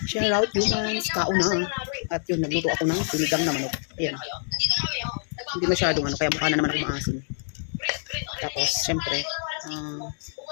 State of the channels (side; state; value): right; silent; 59 dB below the other